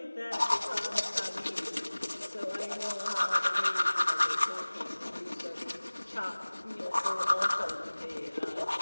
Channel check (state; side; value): inverted; both; correlation -1.00